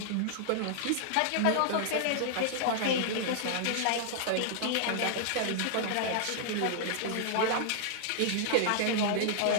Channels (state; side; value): different; both; correlation -0.01